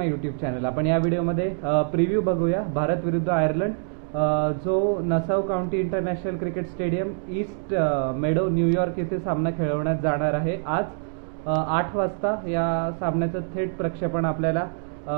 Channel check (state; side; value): silent; left; digital silence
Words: YouTube channel. आपण या व्हिडिओमध्ये प्रिव्ह्यू बघूया भारत विरुद्ध आयर्लंड, जो Nassau County International Cricket Stadium East Meadow New York येथे सामना खेळवण्यात जाणार आहे. आज 8 वाजता या सामन्याचं थेट प्रक्षेपण आपल्याला